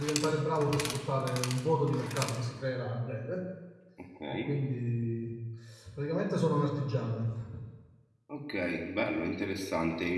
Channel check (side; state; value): both; identical; correlation 1.00